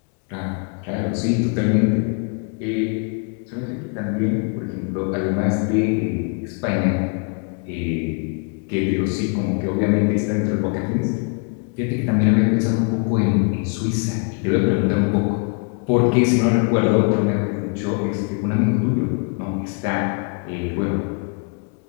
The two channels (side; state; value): right; quieter; 38.4 dB